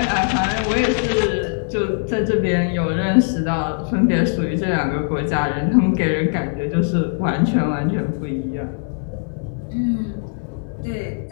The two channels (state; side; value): silent; right; 65 dB below the other